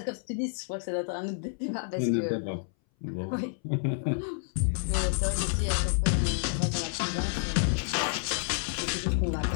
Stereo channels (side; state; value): right; silent; 58 dB below the other